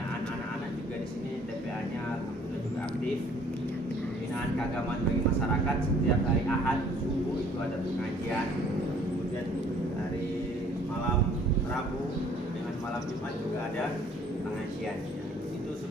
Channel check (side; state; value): both; normal; correlation 0.58